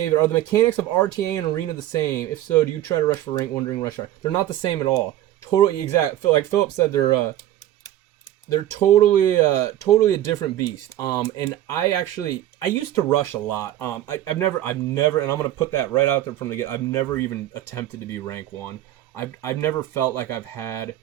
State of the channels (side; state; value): left; quieter; 13.1 dB